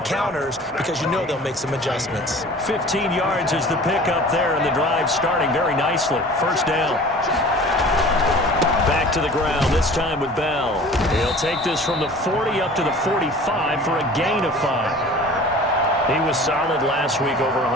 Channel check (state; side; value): normal; both; correlation 0.44